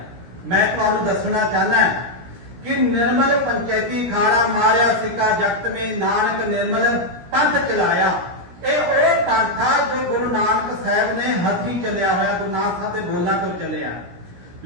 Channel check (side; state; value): left; late; 17 ms